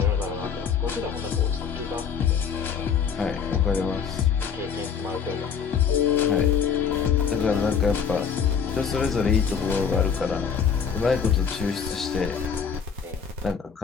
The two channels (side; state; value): right; quieter; 6.9 dB